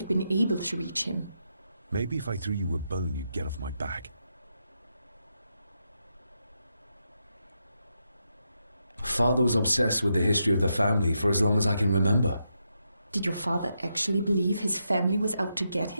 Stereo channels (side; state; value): both; inverted; correlation -0.83